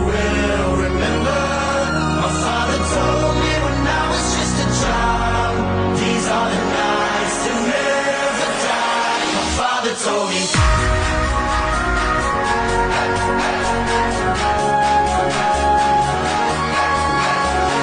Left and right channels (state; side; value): identical; both; correlation 1.00